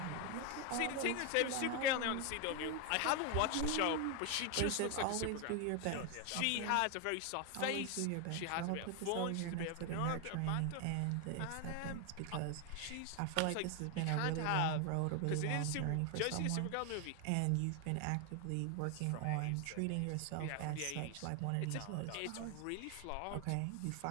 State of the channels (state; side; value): different; both; correlation 0.01